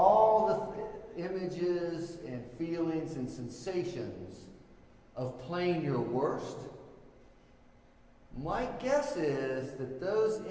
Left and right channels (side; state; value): both; identical; correlation 1.00